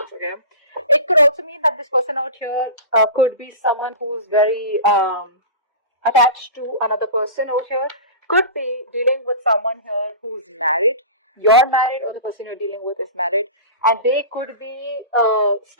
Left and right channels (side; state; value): both; inverted; correlation -0.32